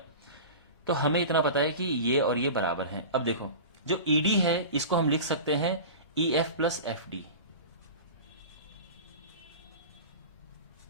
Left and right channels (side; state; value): both; inverted; correlation -0.32